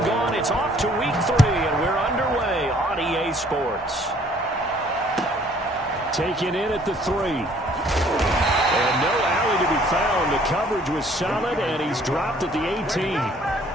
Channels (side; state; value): both; normal; correlation 0.59